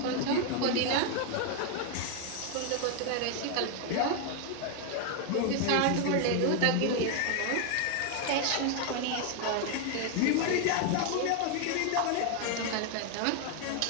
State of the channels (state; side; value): different; both; correlation 0.01